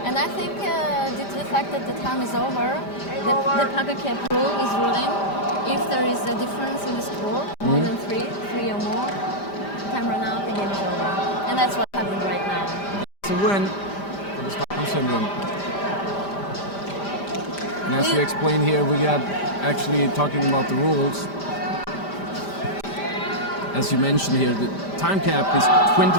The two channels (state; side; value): late; right; 5.0 ms